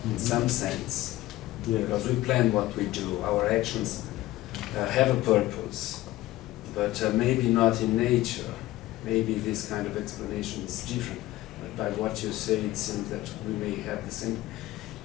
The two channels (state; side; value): quieter; right; 16.6 dB